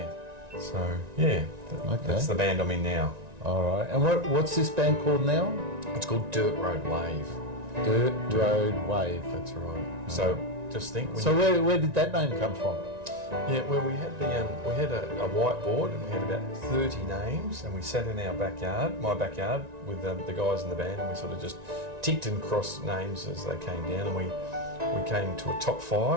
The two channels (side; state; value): left; late; 1.9 ms